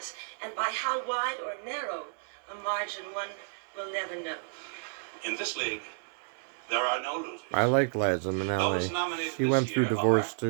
and by how wide or narrow a margin one will never know. In this league, there are no losers. I like Liza Those Minnelli. nominated She this went through year divorce are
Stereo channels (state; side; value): silent; left; 57 dB below the other